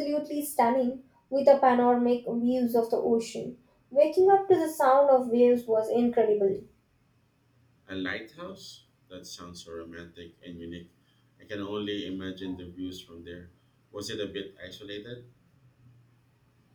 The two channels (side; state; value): both; identical; correlation 1.00